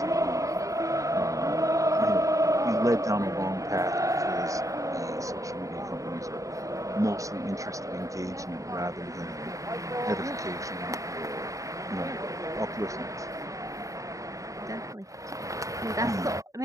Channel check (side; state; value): left; late; 0.16 ms